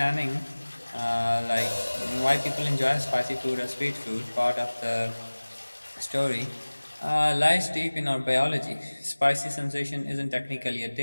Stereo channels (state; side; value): inverted; both; correlation -1.00